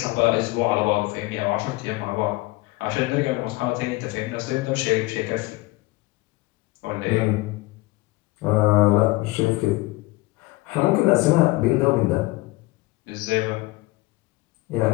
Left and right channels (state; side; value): quieter; right; 21.3 dB